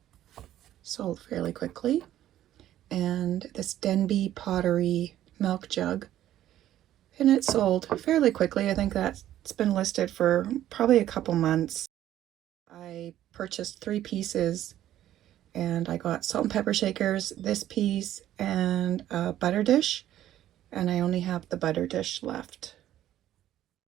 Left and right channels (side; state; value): left; quieter; 12.6 dB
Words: sold fairly quickly. And this Denby pottery milk jug, and it sold fairly quickly. I think that's been listed for probably a couple months. I purchased 3 pieces, and I got salt and pepper shakers, this piece, and a butter dish, and I only have the butter dish left.